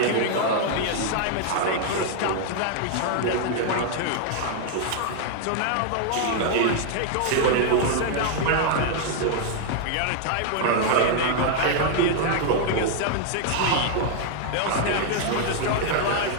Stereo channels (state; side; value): different; both; correlation 0.00